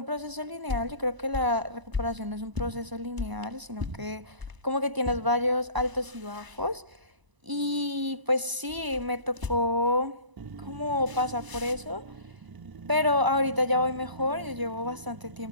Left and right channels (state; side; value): late; left; 1.0 ms